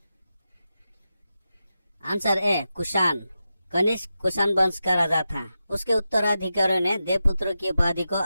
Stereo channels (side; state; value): both; inverted; correlation -0.90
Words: Answer A Kushan. कनिष्क कुषाण वंश का राजा था। उसके उत्तराधिकारियों ने देवपुत्र की उपाधि को